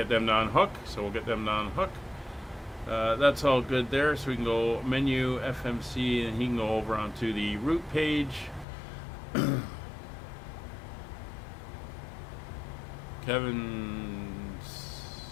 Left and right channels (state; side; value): drops out; right; at 8.7 s